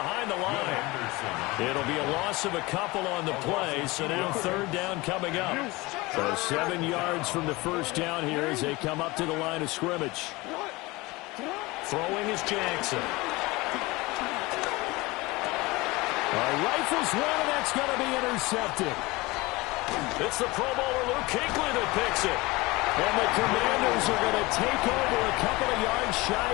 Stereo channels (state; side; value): quieter; right; 22.3 dB